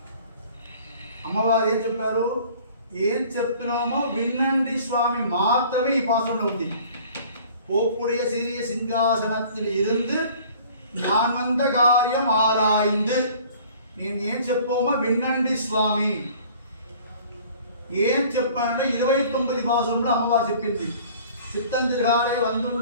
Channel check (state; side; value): inverted; both; correlation -0.50